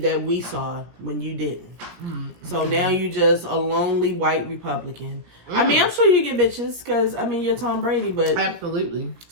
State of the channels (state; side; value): late; left; 17 ms